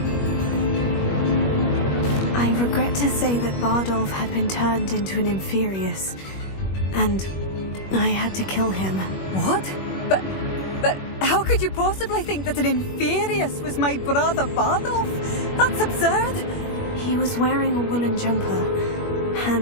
I regret to say that Bardolph had been turned into an Inferius, and I had to kill him. What? But how could you possibly think that an Inferius was my brother Bardolph? That's absurd. He was wearing a woolen jumper,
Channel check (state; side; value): late; right; 21 ms